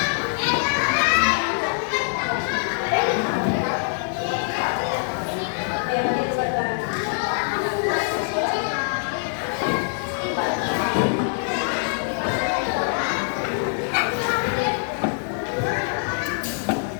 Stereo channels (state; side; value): silent; right; 63 dB below the other